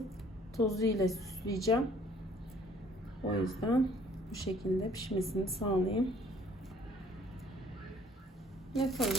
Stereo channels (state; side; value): normal; both; correlation 0.57